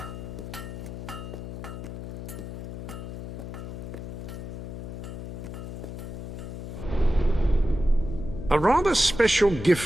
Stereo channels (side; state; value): left; noise; hum, 8 dB below the sound